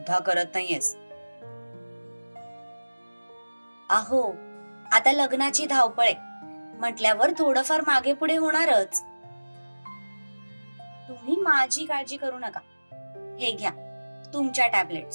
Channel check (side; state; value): both; inverted; correlation -1.00